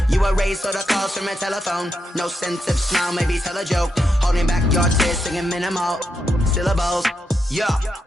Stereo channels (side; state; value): both; normal; correlation 0.84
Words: You erase all the calls from a telephone. No sense of smile, maybe tell a joke. Holding back your tears, singing minimal syllables. Yeah,